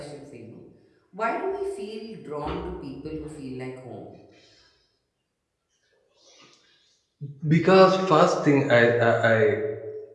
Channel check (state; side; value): identical; both; correlation 1.00